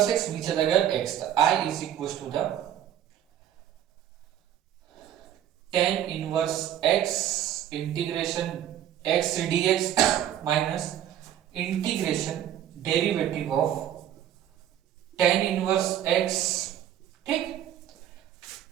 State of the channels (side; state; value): left; quieter; 10.9 dB